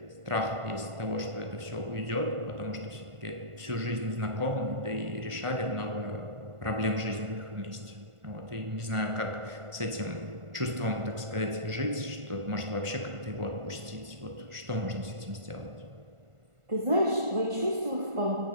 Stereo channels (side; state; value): left; late; 1.5 ms